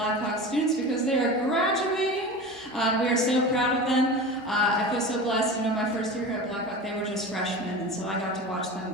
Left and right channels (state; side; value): normal; both; correlation 0.31